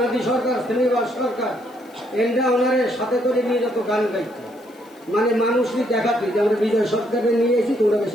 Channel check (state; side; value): noise; left; hiss, 29 dB below the sound